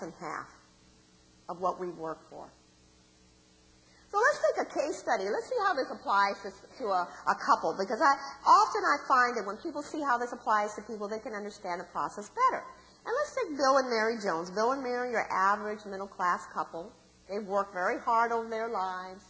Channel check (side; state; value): both; identical; correlation 1.00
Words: half of what we've worked for. So let's take a case study. Let's see how this applies to a couple, because often I find that when people see how this applies to people, they can understand the process better. And let's take Bill and Mary Jones. Bill and Mary are average middle-class couple. They've worked very hard over their lives.